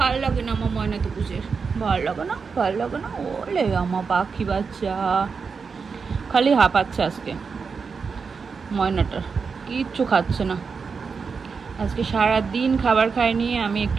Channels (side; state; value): left; quieter; 5.3 dB